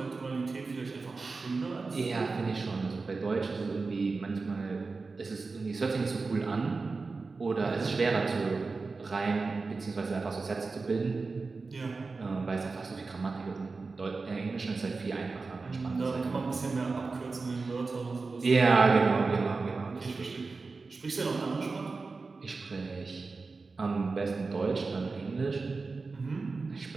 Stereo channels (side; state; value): left; quieter; 4.1 dB